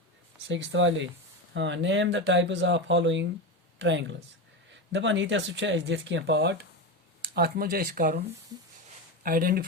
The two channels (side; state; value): both; normal; correlation 0.18